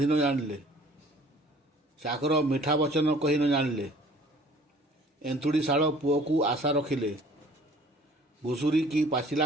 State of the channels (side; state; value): both; normal; correlation 0.52